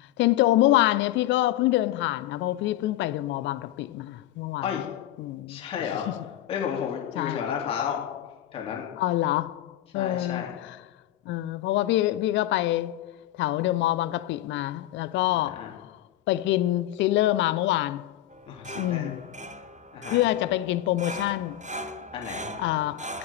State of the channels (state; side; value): quieter; right; 13.4 dB